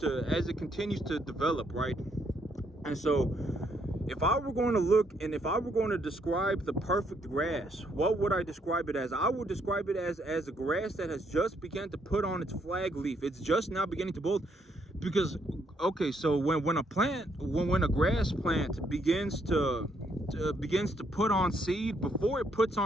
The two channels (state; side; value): normal; both; correlation 0.72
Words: develop, right? And so if I were going to look and if I were going to describe the perfect grass, what would I describe it as? I would describe it as a grass that has just begun to put on its flag leaf. It's just now beginning to bolt. Because, okay, so when a grass plant begins to put on seed, before it puts